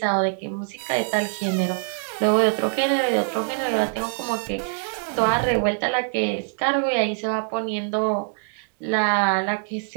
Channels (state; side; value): silent; left; digital silence